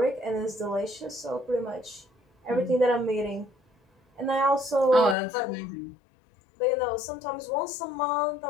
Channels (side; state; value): right; drops out; at 5.2 s